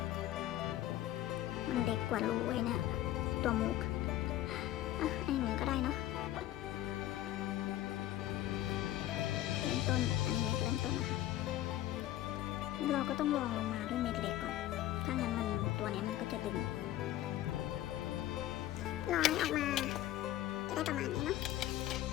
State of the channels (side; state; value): right; quieter; 14.0 dB